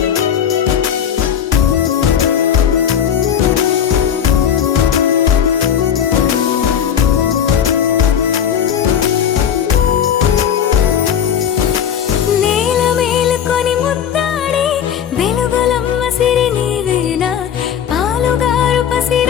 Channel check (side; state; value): right; quieter; 8.7 dB